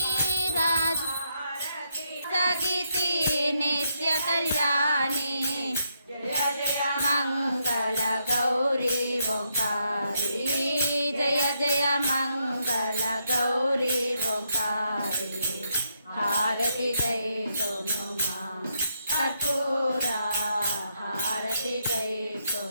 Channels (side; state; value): both; inverted; correlation -0.78